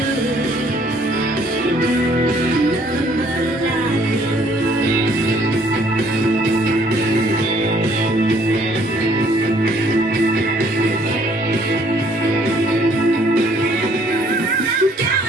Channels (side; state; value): both; normal; correlation 0.62